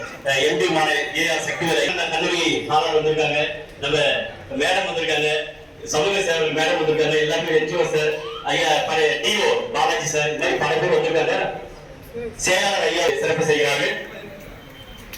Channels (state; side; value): identical; both; correlation 1.00